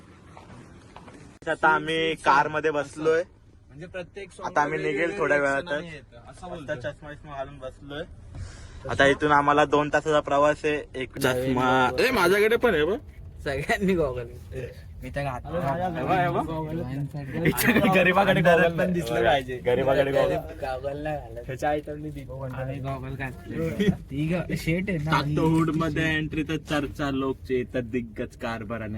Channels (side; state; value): both; identical; correlation 1.00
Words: आता आम्ही कार मध्ये बसलोय. म्हणजे प्रत्येक आता आम्ही निघेल थोड्या वेळातच. चष्मा विष्मा घालून बसलोय. आता इथून आम्हाला 2 तासाचा प्रवास आहे. एक चष्मा माझ्याकडे पण आहे. सगळ्यांनी गॉगल मी तर गरीबाकडे गॉगल पण दिसलं पाहिजे. गरीबाकडे गॉगल नाही घालत ह्याच्या आयटमनी गॉगल घातले. शेट आहे ना हुड मध्ये एंट्री तर चर्चा लोकचे तर दिग्गज कारभार